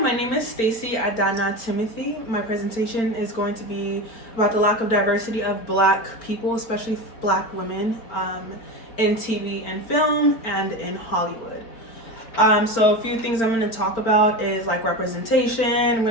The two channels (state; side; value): late; right; 4.4 ms